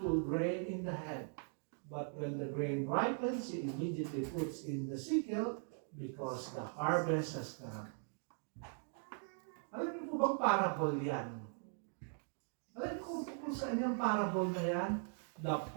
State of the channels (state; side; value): silent; left; 51 dB below the other